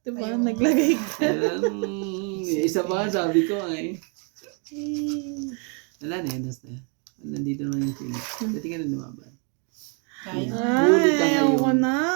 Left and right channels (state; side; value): quieter; left; 38.1 dB